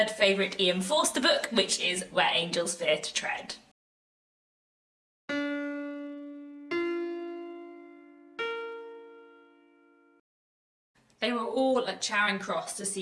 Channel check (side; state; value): both; identical; correlation 1.00